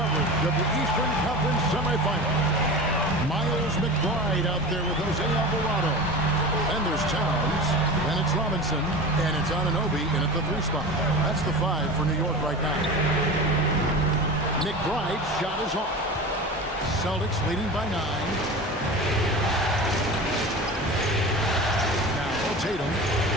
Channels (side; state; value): both; normal; correlation 0.31